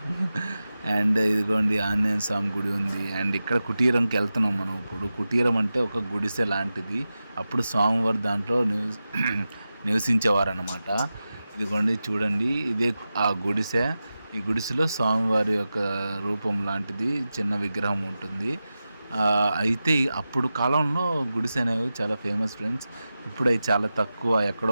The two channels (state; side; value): inverted; both; correlation -0.93